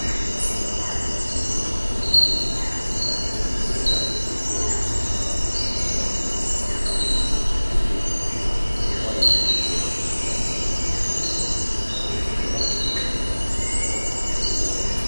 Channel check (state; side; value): inverted; both; correlation -1.00